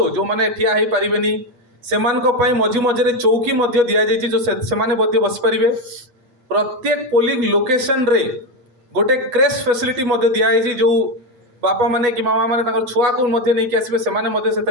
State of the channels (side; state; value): left; late; 8.3 ms